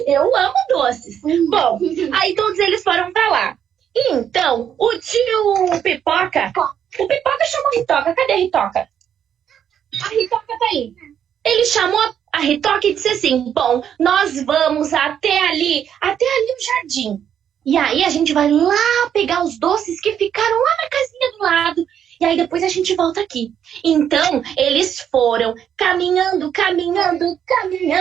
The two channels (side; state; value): left; quieter; 9.0 dB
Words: Eu amo doces. Bom, aí todos eles foram pra lá. E então, o tio Pipoca... O Pipoca chamou a Ritoca. Cadê a Ritoca? A Ritoca tá aí. Ele chamou a Ritoca e disse assim, bom, nós vamos até ali o jardim. E aí a gente vai lá pegar os doces que ficaram lá na casinha do lado. E aí depois a gente volta aqui. Então, eles foram caminhando,